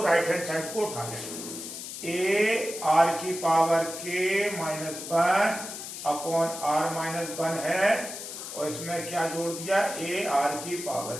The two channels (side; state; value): left; noise; hiss, 9 dB below the sound